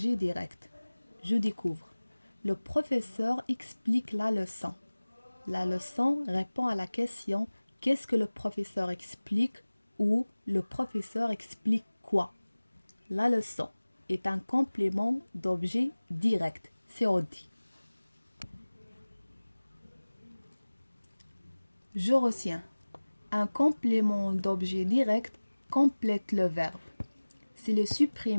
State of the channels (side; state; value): both; inverted; correlation -1.00